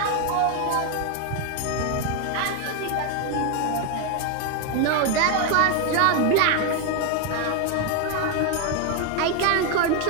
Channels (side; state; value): both; different; correlation 0.01